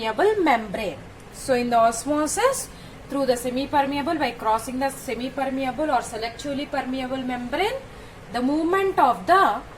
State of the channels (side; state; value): both; identical; correlation 1.00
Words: membrane. So in the osmosis, through the semi-permeable, by crossing the semi-permeable or selectively permeable membrane, the movement of the